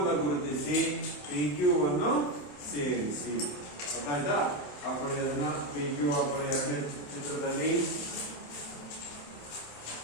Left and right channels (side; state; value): right; late; 27 ms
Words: ಗುರುತಿಸಿ PQ ಅನ್ನು ಸೇರಿಸಿ. ಗೊತ್ತಾಯ್ತಾ? ಹಾಕೊಳ್ಳಿ ಅದನ್ನ. PQ ಹಾಕೊಳ್ಳಿ ಎರಡನೇ ಚಿತ್ರದಲ್ಲಿ.